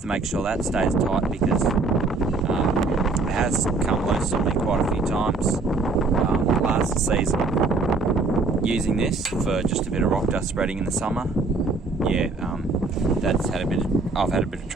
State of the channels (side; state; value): left; quieter; 3.7 dB